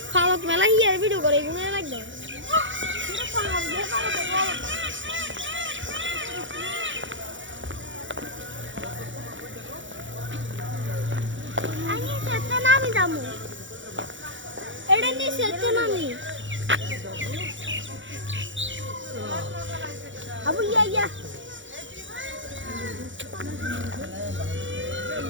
ফালক মেলা হিয়ার ভিডিও করে এগুলো লাগবে পুরো ফালক দিয়ে ফালক আমি সেটা নামি দামু এটা নি সেটা নামি আবু ইয়া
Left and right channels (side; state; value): left; late; 0.55 ms